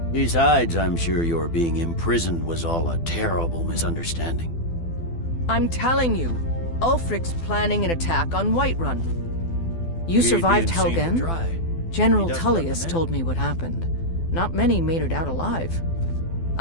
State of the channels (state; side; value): late; right; 12 ms